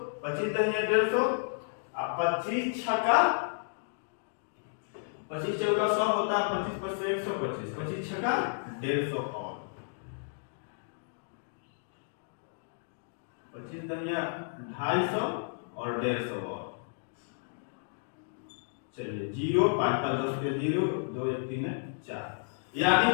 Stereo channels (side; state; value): right; silent; digital silence